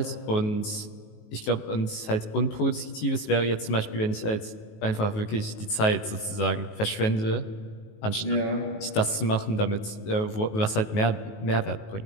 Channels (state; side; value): late; right; 19 ms